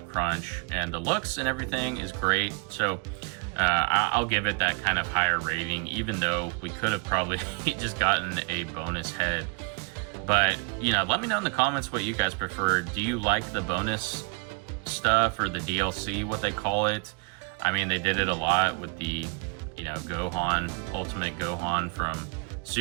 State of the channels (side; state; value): left; quieter; 32.5 dB